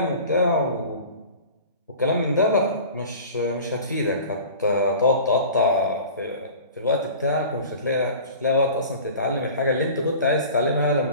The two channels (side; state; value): both; inverted; correlation -0.41